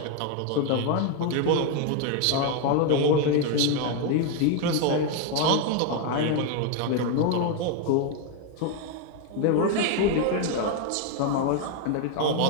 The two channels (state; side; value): different; both; correlation 0.01